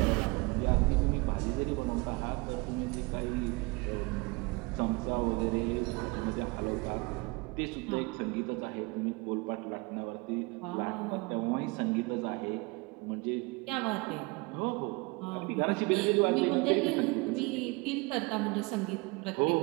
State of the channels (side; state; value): left; quieter; 26.3 dB